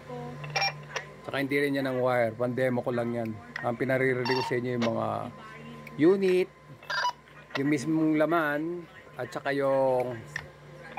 Saka hindi rin yan ang wire. Pan-demo ko lang yan. Ang pinaririnig ko sa inyo yung mga unit, yung mismong laman, at saka yung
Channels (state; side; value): identical; both; correlation 1.00